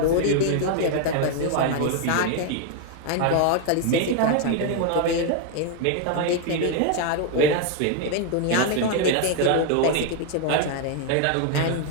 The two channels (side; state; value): both; different; correlation 0.01